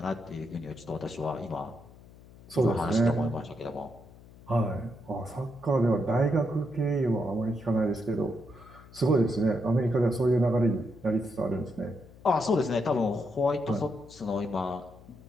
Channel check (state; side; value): noise; left; hum, 22 dB below the sound